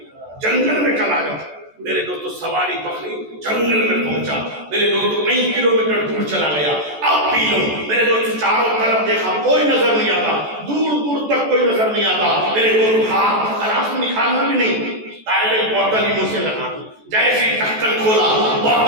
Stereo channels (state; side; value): late; left; 14 ms